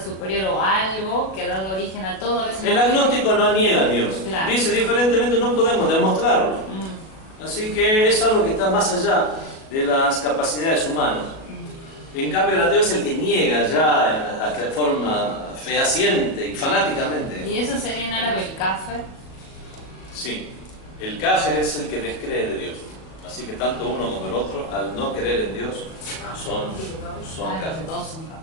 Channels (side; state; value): right; late; 37 ms